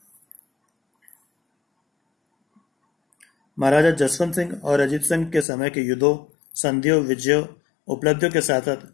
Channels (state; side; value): drops out; right; at 5.5 s